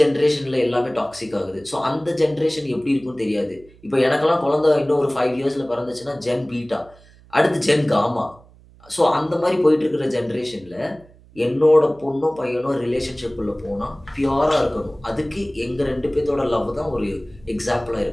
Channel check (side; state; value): right; noise; hum, 26 dB below the sound